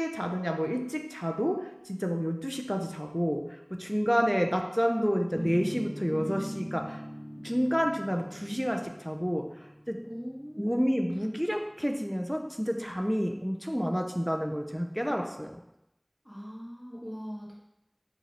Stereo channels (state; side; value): identical; both; correlation 1.00